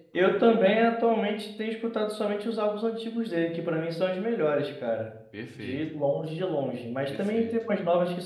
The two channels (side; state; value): both; identical; correlation 1.00